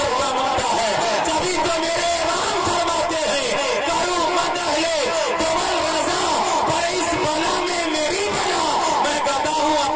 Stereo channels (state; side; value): identical; both; correlation 1.00